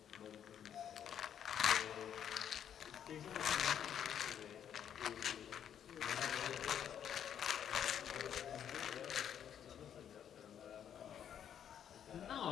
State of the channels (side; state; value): right; quieter; 9.2 dB